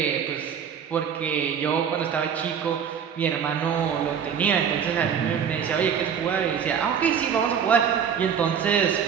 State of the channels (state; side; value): quieter; left; 7.6 dB